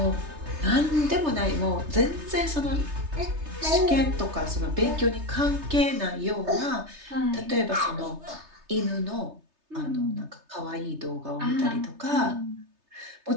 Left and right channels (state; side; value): late; left; 3.3 ms